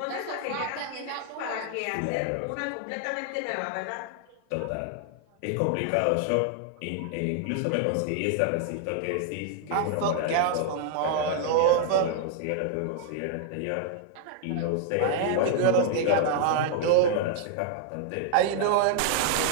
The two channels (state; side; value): different; both; correlation 0.00